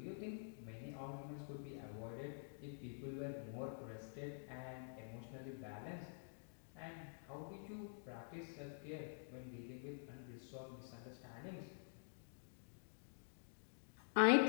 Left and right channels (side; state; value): right; silent; digital silence